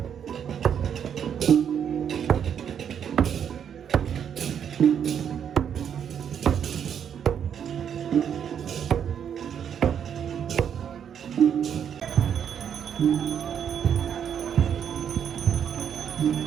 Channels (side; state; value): left; quieter; 8.4 dB